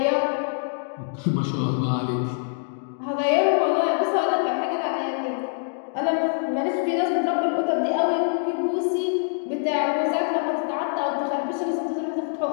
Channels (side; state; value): right; silent; digital silence